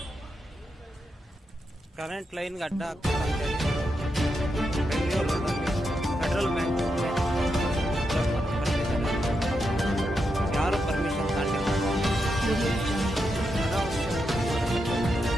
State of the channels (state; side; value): normal; both; correlation 0.85